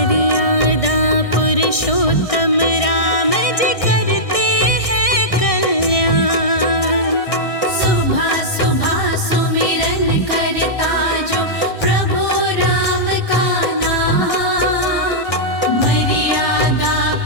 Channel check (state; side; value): late; right; 1.6 ms